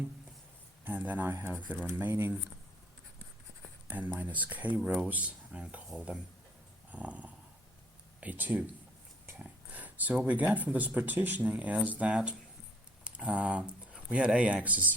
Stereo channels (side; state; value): both; normal; correlation 0.59